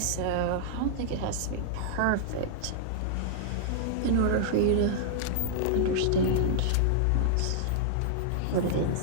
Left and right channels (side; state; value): both; different; correlation -0.01